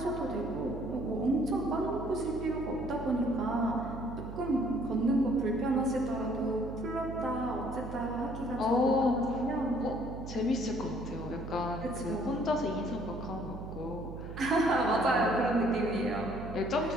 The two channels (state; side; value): noise; right; hum, 10 dB below the sound